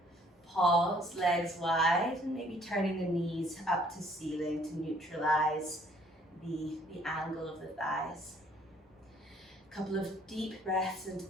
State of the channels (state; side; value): normal; both; correlation 0.61